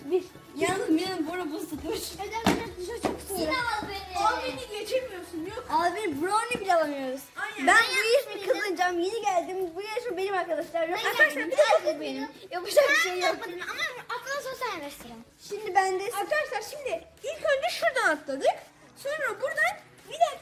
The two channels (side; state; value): both; identical; correlation 1.00